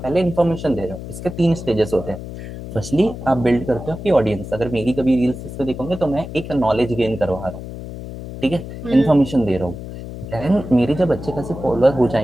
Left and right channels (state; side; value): noise; left; hum, 10 dB below the sound